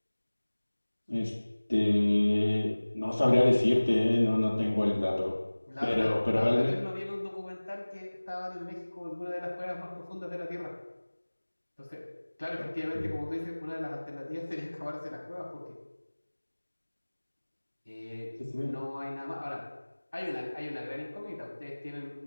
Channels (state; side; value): inverted; both; correlation -1.00